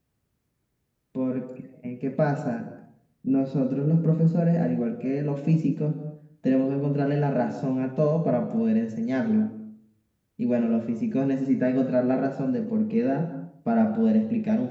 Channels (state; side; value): identical; both; correlation 1.00